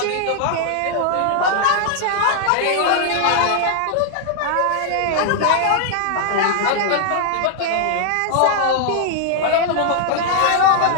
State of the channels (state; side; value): different; both; correlation 0.00